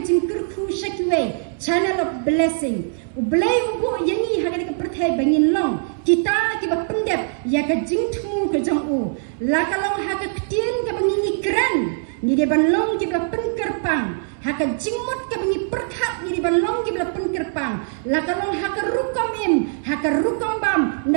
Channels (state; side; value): silent; left; 64 dB below the other